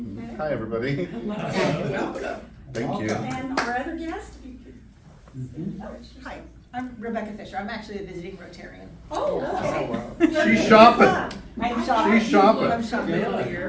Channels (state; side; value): identical; both; correlation 1.00